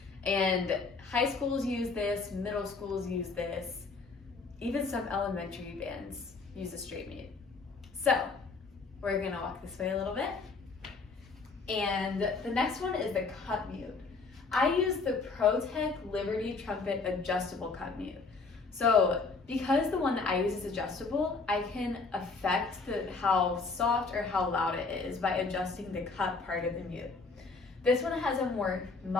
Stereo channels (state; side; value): quieter; right; 4.2 dB